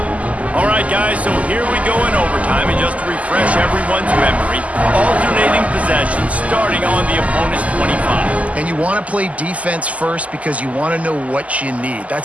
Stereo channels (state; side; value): late; left; 0.070 ms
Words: All right, right, guys, so here we go in overtime, and just to refresh everyone's memory, alternating possession starting on the opponent's 25. And you want to play defense first because you want to know what you need.